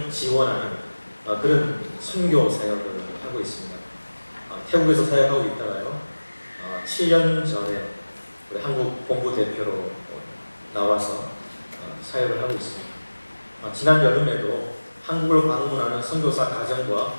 지원하는 그런 선교 사역을 하고 있습니다. 태국에서 사역하고 있다가요, 7년 전에 우리 한국 본부 대표로 나와서 사역을 하고 있습니다. 지난 여름에도 한국을 방문하는 선교사 가정과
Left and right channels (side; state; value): both; inverted; correlation -1.00